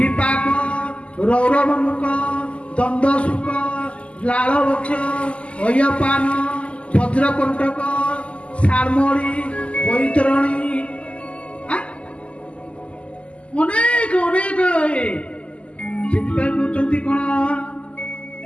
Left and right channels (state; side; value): late; right; 0.057 ms